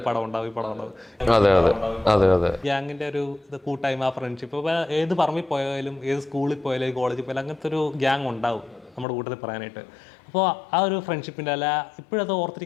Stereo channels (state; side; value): drops out; right; at 9.1 s